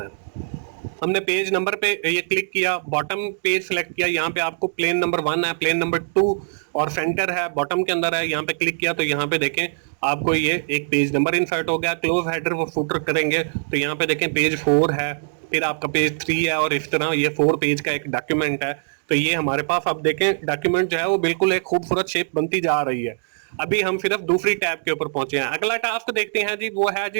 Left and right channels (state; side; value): silent; left; 64 dB below the other